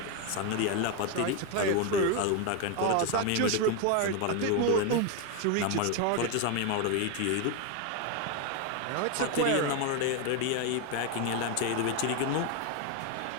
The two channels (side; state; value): both; different; correlation 0.02